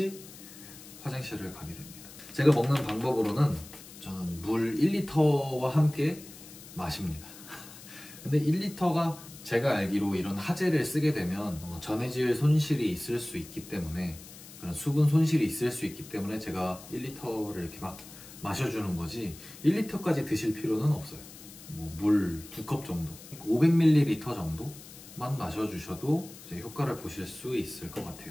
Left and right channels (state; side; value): noise; left; hiss, 17 dB below the sound